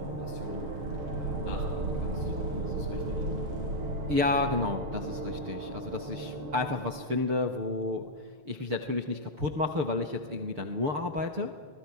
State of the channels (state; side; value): late; left; 6.7 ms